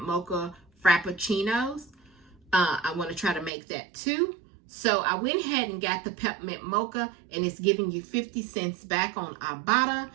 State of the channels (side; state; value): left; drops out; at 3.5 s